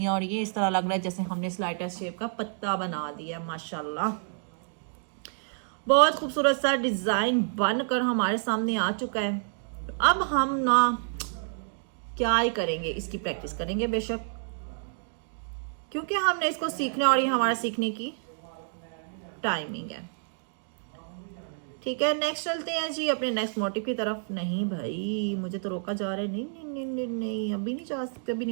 और ये इस तरह लग रहा है जैसे हमने स्लाइड टेस्ट शेप का पत्ता बना दिया। माशाल्लाह बहुत खूबसूरत सा डिज़ाइन बनकर हमारे सामने आ चुका है। अब हम ना क्या ही करेंगे, इसकी प्रैक्टिस करेंगे बेशक, क्योंकि हमने इसको सीखना और ये हमारा सीखने की टाइमिंग है, ठीक है। नेक्स्ट चलते हैं जी अपने नेक्स्ट मोटिव की तरफ। नहीं भाई मुझे तो रोका जा रहा है, नहीं नहीं नहीं नहीं, नहीं अभी नहीं जा सकते, अभी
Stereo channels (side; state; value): left; silent; digital silence